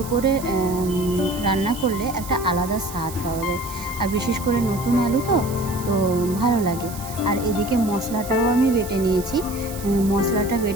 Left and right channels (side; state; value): right; noise; hiss, 14 dB below the sound